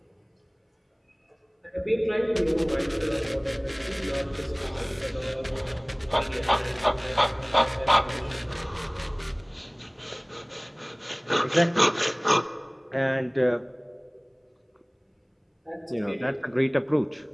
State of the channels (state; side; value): identical; both; correlation 1.00